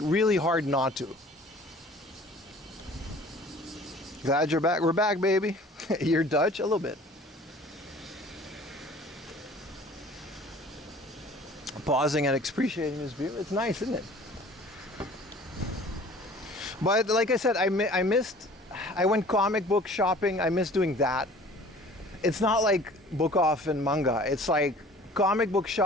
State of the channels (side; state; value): both; normal; correlation 0.48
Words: really hard not to. Glad you're back. We're back, baby. You're Dutch? A little bit. Pausing and appreciating this view. It's nice, isn't it? But like I said, I went comic book shopping. I miss doing that. It's not like book off and manga. It's like comic book